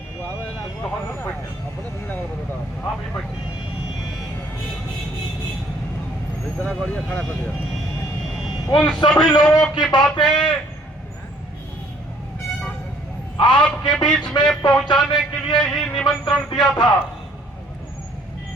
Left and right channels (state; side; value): normal; both; correlation 0.60